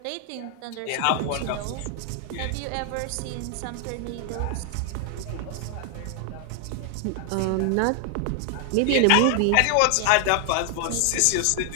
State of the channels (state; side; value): different; both; correlation 0.00